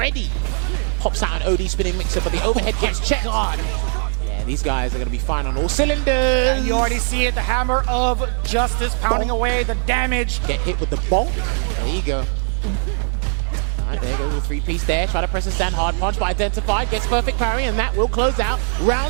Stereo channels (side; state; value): left; silent; 63 dB below the other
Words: pops out an OD spinning mixer, but the overhead gets checked. God. Yeah, these guys are going to be fine on all cylinders. And you already see it, the hammer of justice pounding away the damage. Get hit with the bonk. There you go. All right, there goes the three-piece there. Try to press a stand hard punch, but identified, gets perfect parry, and that will close out